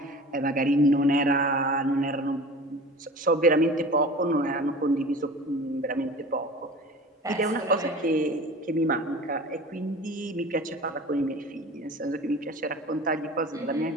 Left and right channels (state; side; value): normal; both; correlation 0.39